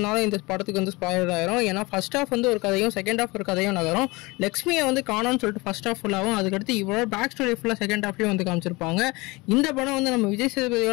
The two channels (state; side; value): quieter; right; 24.1 dB